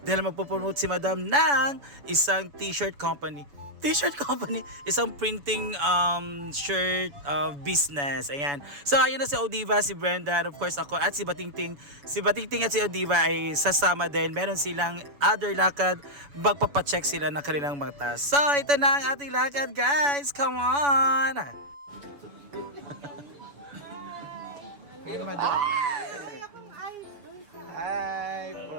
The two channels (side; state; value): left; late; 7.0 ms